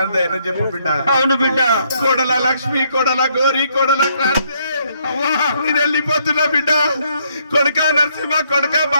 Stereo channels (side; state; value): both; inverted; correlation -0.71